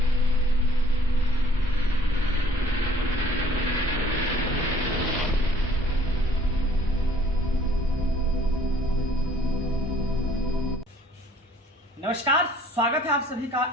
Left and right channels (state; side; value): normal; both; correlation 0.58